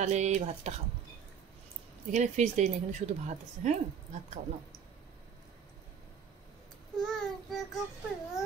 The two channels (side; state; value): left; quieter; 7.2 dB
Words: এই ভাতটা খাও। এখানে ফিশ দেই না, এখানে শুধু ভাত আছে। হ্যাঁ, ভাত খাও না।